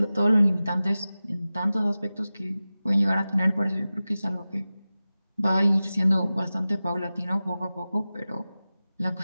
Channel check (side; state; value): both; inverted; correlation -0.96